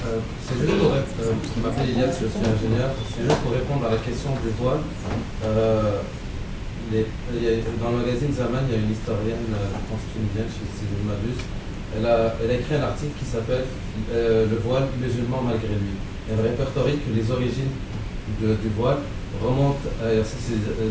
C'est juste pour je m'appelle Ilias, je suis ingénieur. C'est juste pour répondre à la question du voile. Dans le magazine Zaman, il y a une historienne, je pense tunisienne, si je ne m'abuse. Elle a écrit un article qui s'appelle Le voile musulman malgré lui. Elle répertorie que les origines du voile remontent à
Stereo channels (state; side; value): identical; both; correlation 1.00